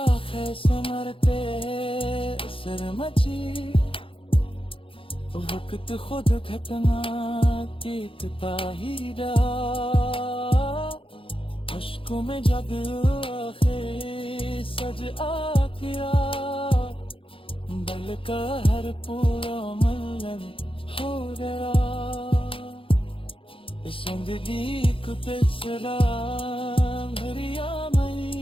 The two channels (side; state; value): right; late; 0.26 ms